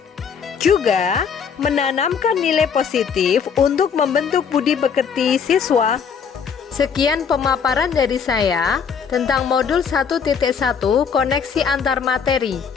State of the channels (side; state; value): right; quieter; 6.7 dB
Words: Juga menanamkan nilai positif untuk membentuk budi pekerti siswa. Sekian pemaparan dari saya tentang modul 1.1 koneksi antar materi.